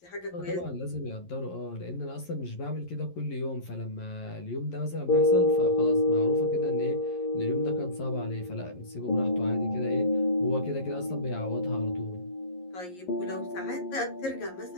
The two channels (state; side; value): late; right; 11 ms